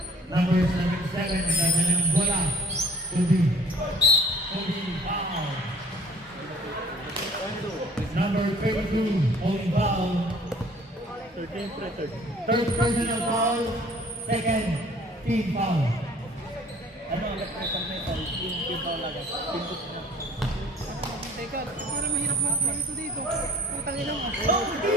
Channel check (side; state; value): both; normal; correlation 0.52